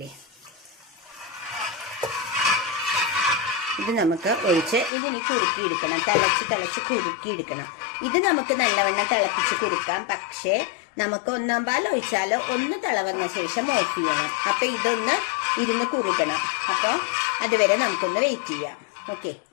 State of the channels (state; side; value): drops out; right; at 4.9 s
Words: ഇത് നമുക്ക് ഒഴിച്ച് ഇതിനി കുറുക്കിയെടുക്കണം. തിളച്ച് കുറുക്കിയെടുക്കണം. ഇത് നമുക്ക് നല്ലവണ്ണം തിളപ്പിച്ച് കുറുക്കാം. പക്ഷേ നമുക്ക് 1-ാം പാൽ ഒഴിച്ചാൽ ഒന്ന് തിളവന്ന ശേഷം ഓഫ് ചെയ്യണം. അപ്പം ഇതൊന്ന് ഇരുന്ന് കുറുകണം. അപ്പോൾ അതുവരെ നമുക്കൊന്ന് വെയിറ്റ് ചെയ്യാം. ഓക്കെ,